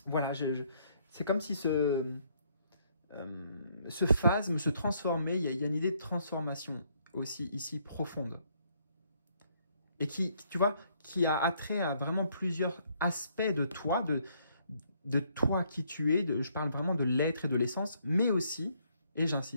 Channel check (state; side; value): inverted; both; correlation -0.69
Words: voilà, c'est comme si ce phasme se transformait, il y a une idée de transformation aussi ici profonde. Et qui, tu vois, qui a attrait à vraiment plusieurs aspects de toi, de toi qui tu es, je parle vraiment de l'être et de l'essence, mais aussi, et